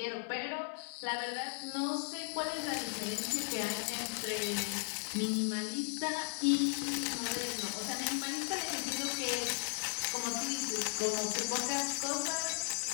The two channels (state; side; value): silent; right; 54 dB below the other